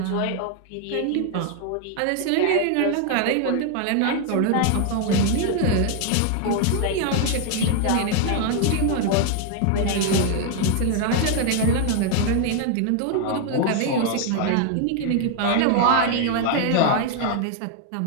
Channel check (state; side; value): different; both; correlation 0.00